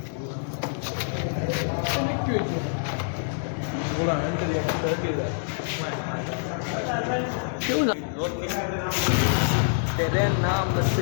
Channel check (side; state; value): right; silent; digital silence